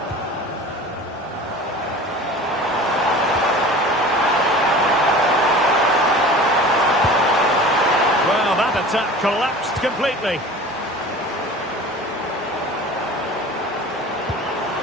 Attack collapsed completely.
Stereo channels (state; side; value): normal; both; correlation 0.39